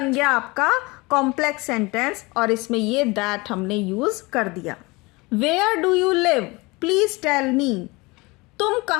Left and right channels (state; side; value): quieter; right; 24.5 dB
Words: गया आपका कॉम्प्लेक्स सेंटेंस और इसमें ये दैट हमने यूज कर दिया। Where do you live, please tell me, तुम